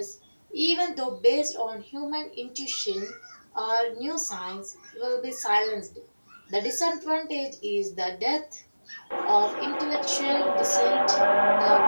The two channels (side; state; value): both; inverted; correlation -1.00